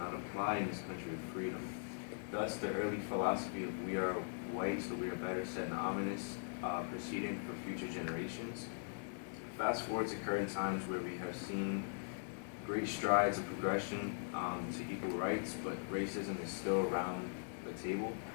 apply in this country of freedom. Thus, the early philosophy of we are white, so we are better, set an ominous precedent for future generations. Fast forward to current times where we have seen great strides of progression to equal rights, but racism is still around the table.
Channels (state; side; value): silent; right; digital silence